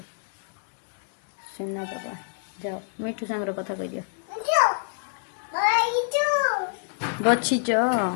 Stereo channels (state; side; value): silent; right; digital silence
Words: सुना पापा जाओ मिठू सांगर कथा कह दियो बचिच